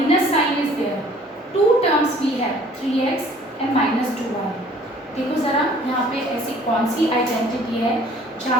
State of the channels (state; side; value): normal; both; correlation 0.54